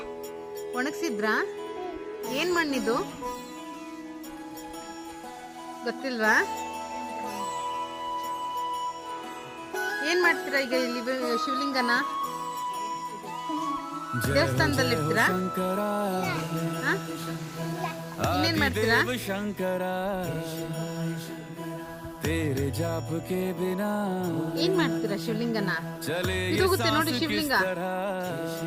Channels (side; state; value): both; identical; correlation 1.00